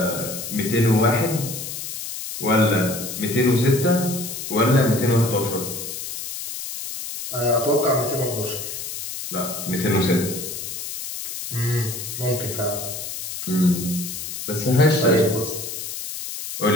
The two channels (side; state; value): left; noise; hiss, 7 dB below the sound